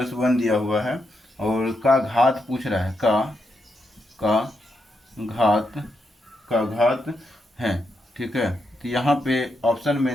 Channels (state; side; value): normal; both; correlation 0.83